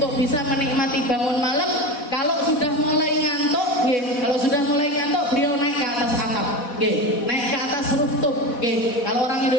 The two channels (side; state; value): right; late; 4.1 ms